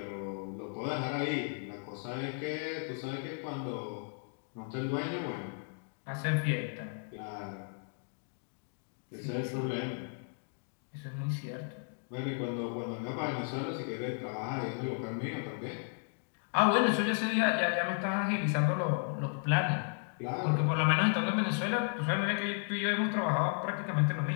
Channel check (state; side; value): silent; right; 55 dB below the other